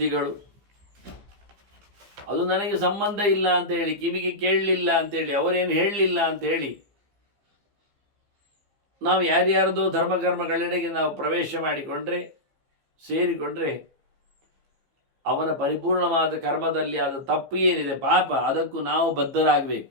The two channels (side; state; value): left; late; 15 ms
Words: ಅದು ನನಗೆ ಸಂಬಂಧ ಇಲ್ಲ ಅಂತ ಹೇಳಿ, ಕಿವಿಗೆ ಕೇಳಲಿಲ್ಲ ಅಂತೇಳಿ, ಅವರೇನು ಹೇಳಲಿಲ್ಲ ಅಂತ ಹೇಳಿ ನಾವು ಯಾರ್ಯಾರದೋ ಧರ್ಮಕರ್ಮಗಳೆಡೆಗೆ ನಾವು ಪ್ರವೇಶ ಮಾಡಿಕೊಂಡ್ರೆ, ಸೇರಿಕೊಂಡ್ರೆ, ಅವನ ಪರಿಪೂರ್ಣವಾದ ಕರ್ಮದಲ್ಲಿ ಆದ ತಪ್ಪು ಏನಿದೆ, ಪಾಪ, ಅದಕ್ಕೂ ನಾವು ಬದ್ಧರಾಗಬೇಕು.